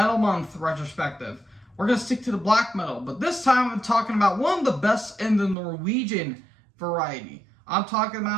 Month retrospective, we're going to stick to the black metal. But this time, I'm talking about one of the best in the Norwegian variety. I'm talking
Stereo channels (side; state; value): left; drops out; at 5.6 s